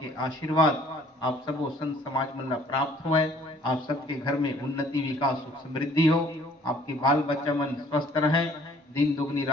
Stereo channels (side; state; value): both; normal; correlation 0.57